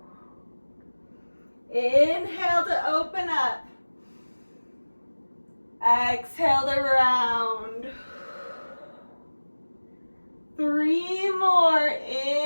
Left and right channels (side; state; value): both; inverted; correlation -1.00